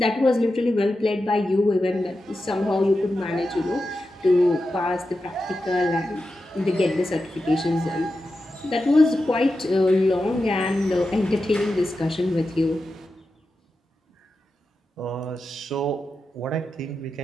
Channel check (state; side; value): normal; both; correlation 0.90